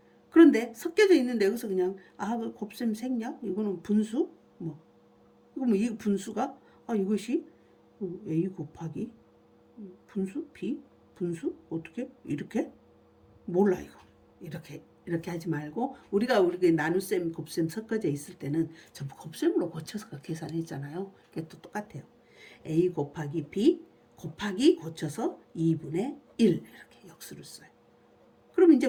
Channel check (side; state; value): both; identical; correlation 1.00